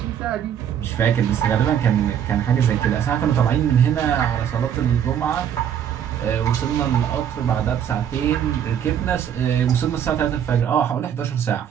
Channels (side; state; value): left; quieter; 9.1 dB